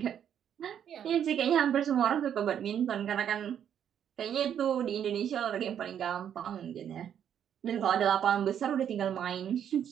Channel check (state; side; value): quieter; left; 9.2 dB